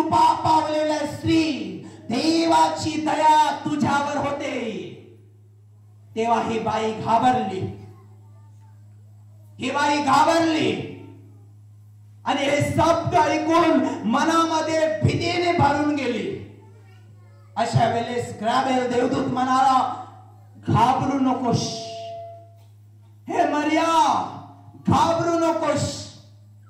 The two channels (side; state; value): both; identical; correlation 1.00